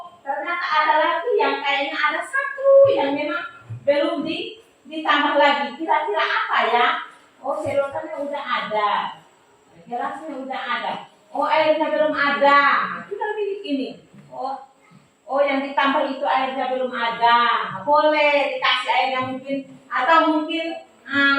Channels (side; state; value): both; identical; correlation 1.00